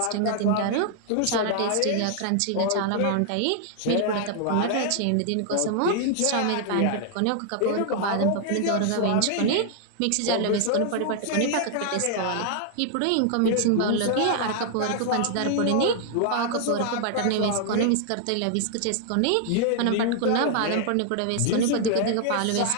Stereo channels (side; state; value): both; different; correlation 0.00